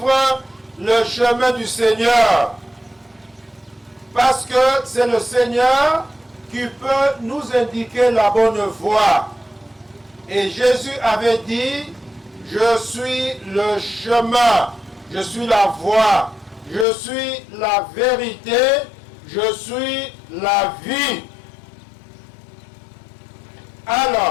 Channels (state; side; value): drops out; right; at 16.9 s